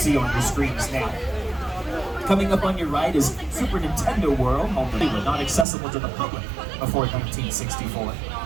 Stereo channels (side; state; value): left; drops out; at 5.7 s